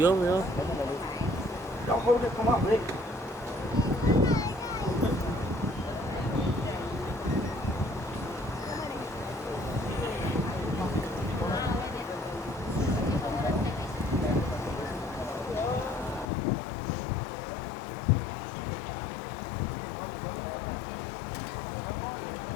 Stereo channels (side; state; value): right; drops out; at 16.2 s